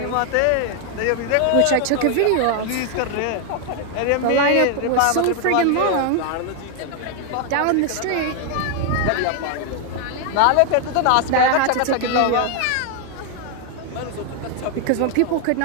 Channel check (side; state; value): both; different; correlation 0.00